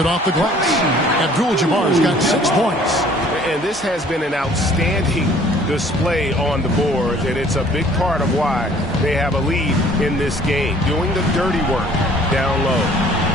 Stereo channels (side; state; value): both; normal; correlation 0.55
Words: off the glass. Abdul-Jabbar's got 6 points. And this has been an outstanding display on the board, and it's a big part of why they have a lead in this game, doing the dirty work down low.